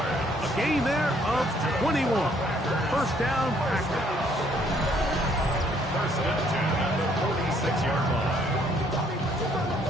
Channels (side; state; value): both; normal; correlation 0.65